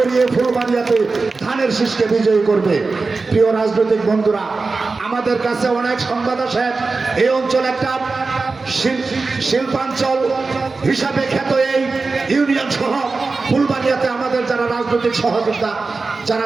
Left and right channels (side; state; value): left; quieter; 4.0 dB